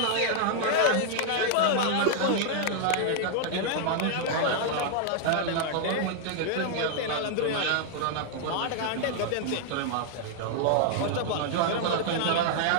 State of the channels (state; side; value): different; both; correlation 0.00